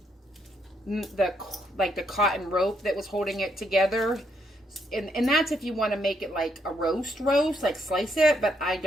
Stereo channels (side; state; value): both; normal; correlation 0.75